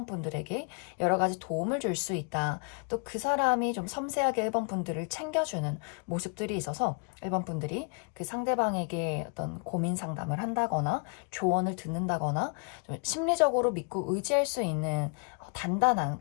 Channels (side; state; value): right; quieter; 37.2 dB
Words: 분들에게 여러 가지 도움을 줄 수 있다. 또 그 사람이 좀 섬세하게 1번 분들을 챙겨주는 모습들이 있어서 1번 분들이 그 상대방에게 어떤 고민 상담을 한다거나 조언을 듣는다거나 좀 심리적으로 믿고 의지할 수 있는 단단한